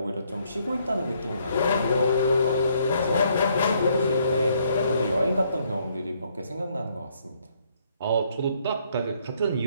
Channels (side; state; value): both; inverted; correlation -0.69